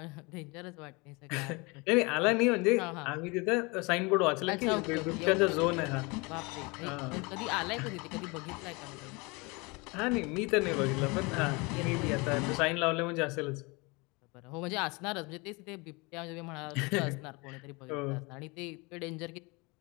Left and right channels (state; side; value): quieter; right; 27.1 dB